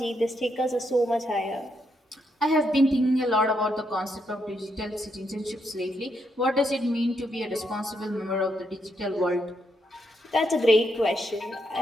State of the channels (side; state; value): both; normal; correlation 0.79